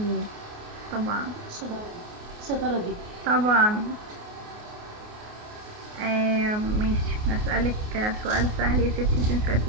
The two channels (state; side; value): late; left; 28 ms